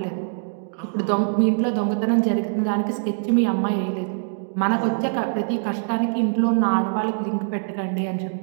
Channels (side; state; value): left; silent; digital silence